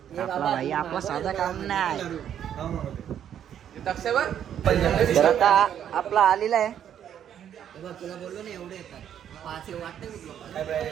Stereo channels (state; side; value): quieter; left; 9.6 dB